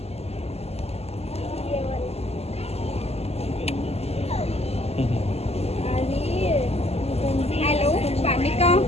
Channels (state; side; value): late; right; 0.30 ms